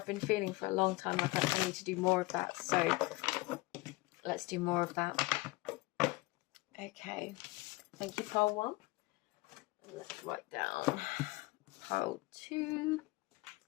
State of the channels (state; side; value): quieter; right; 21.4 dB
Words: been feeling for a long time like I need to do more of that, so let's do more of that. Okay, thank you, pile 1. Let's write down pile 2